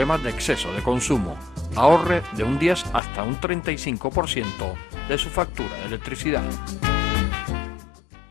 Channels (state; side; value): drops out; right; at 3.0 s